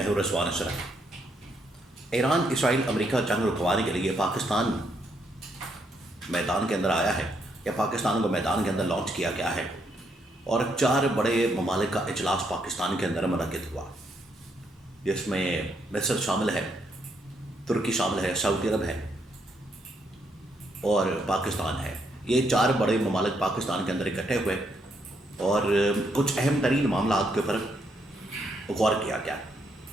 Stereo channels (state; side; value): normal; both; correlation 0.75